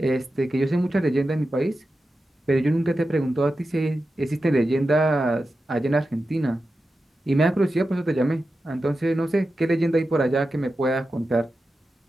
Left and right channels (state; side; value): normal; both; correlation 0.91